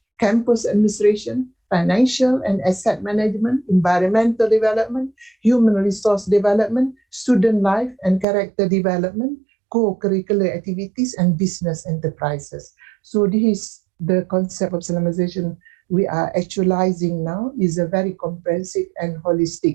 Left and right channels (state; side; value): drops out; left; at 8.2 s